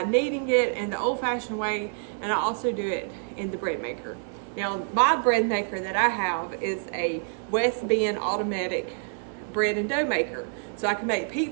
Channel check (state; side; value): silent; left; digital silence